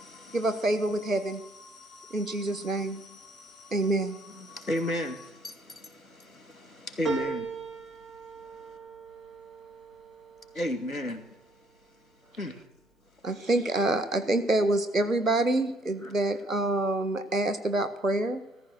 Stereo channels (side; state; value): both; normal; correlation 0.65